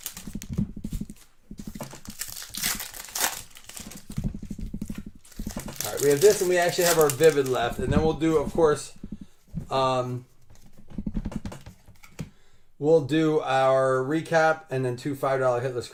All right, we have this, and we actually have our Vivid left, and then we'll do, of course, we'll do our recap and then 2 $5 hitless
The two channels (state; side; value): identical; both; correlation 1.00